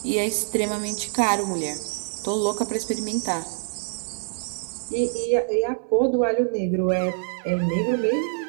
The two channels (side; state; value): left; silent; 61 dB below the other